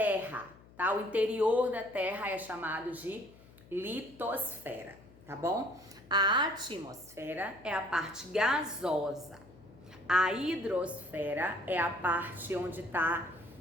tá? O interior da terra é chamado de litosfera, tá bom? A atmosfera é a parte gasosa. A hidrosfera é a parte onde está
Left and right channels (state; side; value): noise; left; hum, 23 dB below the sound